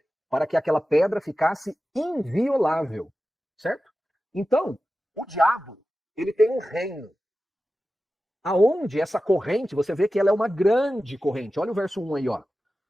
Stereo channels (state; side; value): normal; both; correlation 0.94